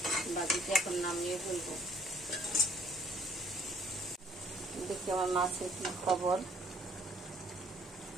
ভাজিটা এখন নামিয়ে ফেলবো। দেখি আমার মাছের কি খবর।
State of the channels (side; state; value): both; normal; correlation 0.60